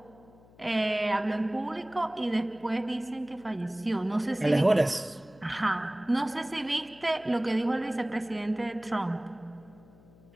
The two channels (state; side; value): noise; left; hum, 25 dB below the sound